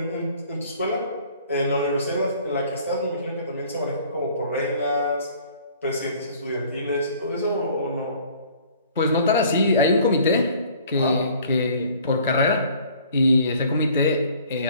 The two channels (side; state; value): both; inverted; correlation -0.54